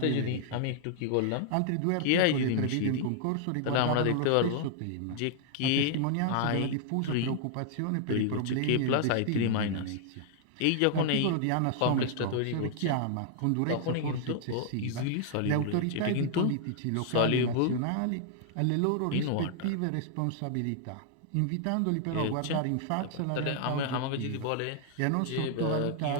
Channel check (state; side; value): different; both; correlation -0.01